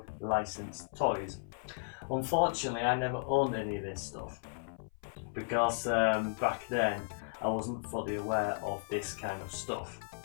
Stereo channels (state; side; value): silent; right; 54 dB below the other